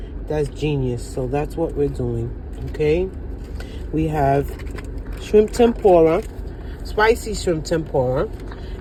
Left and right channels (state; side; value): identical; both; correlation 1.00